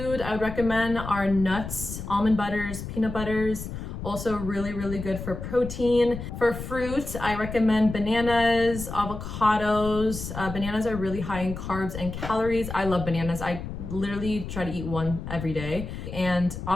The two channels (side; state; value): left; noise; rumble, 8 dB below the sound